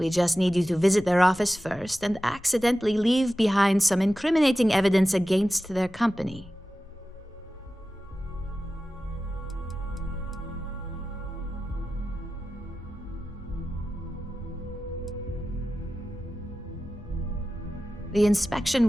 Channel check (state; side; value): normal; both; correlation 0.94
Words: just need you to visit their office first and accidentally leave behind some incriminating evidence against their company. The inspection